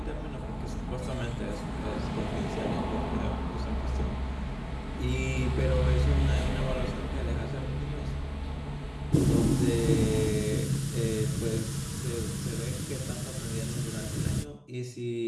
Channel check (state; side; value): identical; both; correlation 1.00